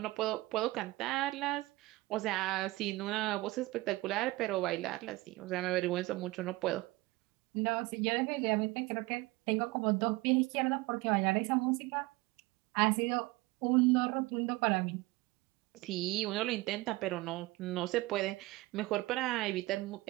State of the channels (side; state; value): left; quieter; 20.6 dB